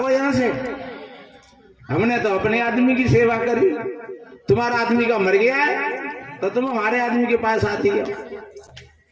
यहां से, हमने तो अपने आदमी की सेवा करी, तुम्हारा आदमी का मर गया है तो तुम हमारे आदमी के पास आती हो।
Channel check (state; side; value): identical; both; correlation 1.00